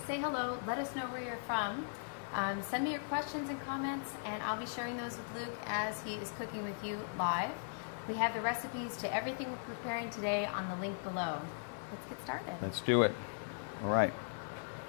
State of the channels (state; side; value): silent; right; digital silence